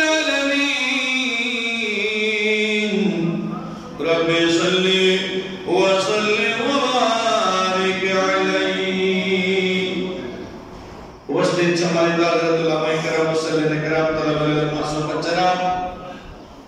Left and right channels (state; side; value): identical; both; correlation 1.00